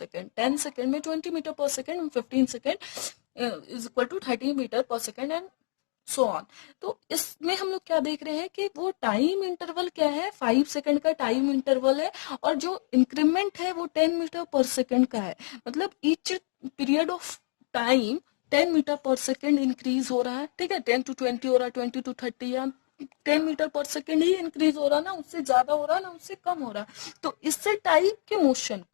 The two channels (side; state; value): right; silent; digital silence